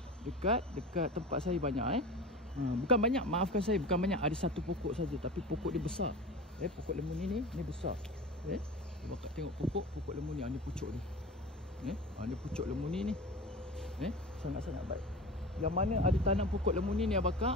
dekat tempat saya banyak. Bukan banyak, maafkan saya, bukan banyak. Ada satu pokok saja, tapi pokok dia besar. Pokok lemuni ni besar. Bakak tengok pokok lemuni. Ni pucuk dia. Ni pucuk lemuni ni. Sangat-sangat baik. Yang mana ada tanam pokok lemuni ni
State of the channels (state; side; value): normal; both; correlation 0.32